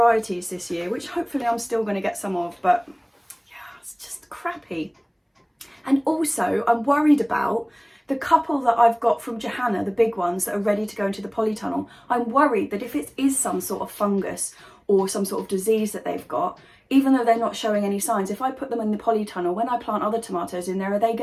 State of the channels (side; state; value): both; identical; correlation 1.00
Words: this year, which hopefully I'm still going to get some of, but yeah, it's just crappy. And also I'm worried about the couple that I've got from Johanna, the big ones that are ready to go into the polytunnel. I'm worried that if it is some sort of fungus or some sort of disease that they've got, even though they're not showing any signs, if I put them in the polytunnel, when I plant other tomatoes in there, are they